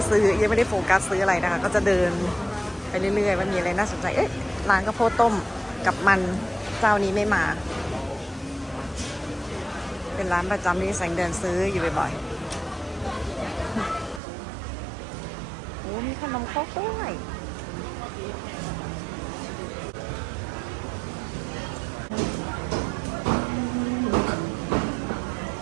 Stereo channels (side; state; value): left; drops out; at 14.2 s